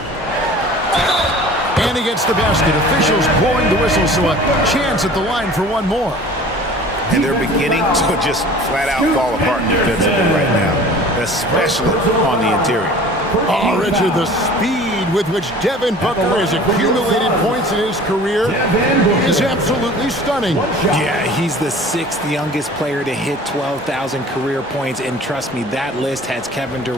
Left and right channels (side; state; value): both; normal; correlation 0.45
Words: And he gets the basket. Officials blowing the whistle, so a chance at the line for one more. And they're beginning to just flat out fall apart defensively right now, especially on the interior. Oh, Richard, the speed with which Devin Booker has accumulated points in his career is absolutely stunning. Yeah, he's the 6th youngest player to hit 12,000 career points, and trust me, that list has Kevin